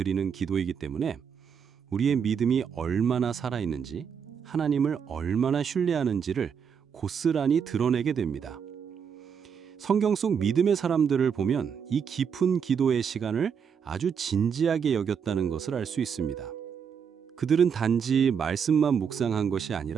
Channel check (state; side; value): quieter; left; 7.0 dB